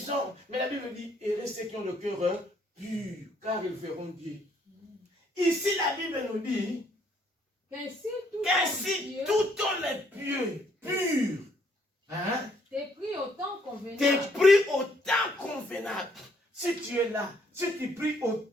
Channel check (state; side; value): normal; both; correlation 0.68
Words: Mais la Bible dit, errez ceux qui ont le cœur pur, car ils verront Dieu. Ici, la Bible nous dit qu'ainsi tout homme est pieux, pur. Hein? T'es pris au temps convenable. T'es pris au temps convenable. Si tu es là, si tu pries au